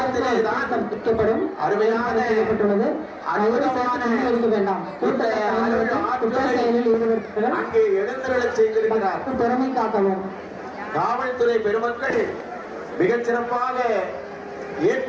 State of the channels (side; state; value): both; identical; correlation 1.00